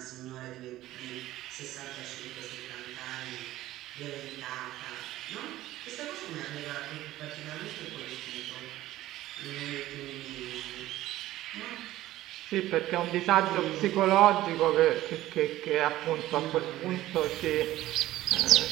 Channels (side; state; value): left; quieter; 15.3 dB